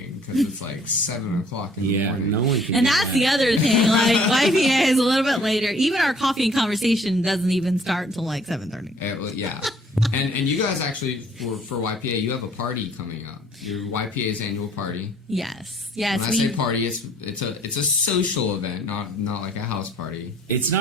because it's like 7 o'clock in the morning. No one can. And do that's that. the other thing. Like YPA is a little bit later. Even our coffee and conversation doesn't even start until like 7:30. Yeah. And you guys actually for YPA, you have a party coming up. Your YPA's annual party. Yes. When I say party, it's a social event, not like a house party. It's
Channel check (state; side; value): normal; both; correlation 0.58